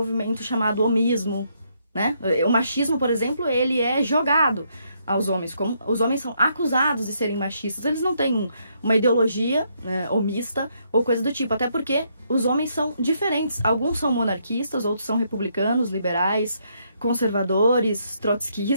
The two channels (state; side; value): inverted; both; correlation -0.74